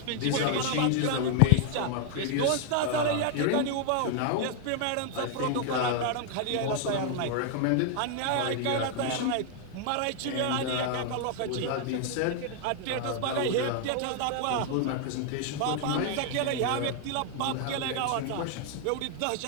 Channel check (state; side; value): different; both; correlation 0.00